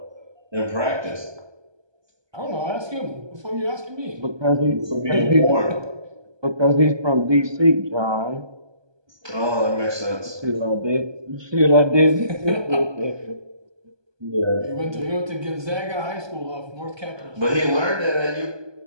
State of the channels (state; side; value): late; left; 1.2 ms